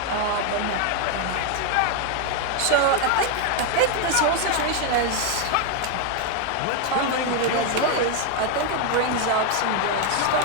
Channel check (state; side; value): different; both; correlation 0.01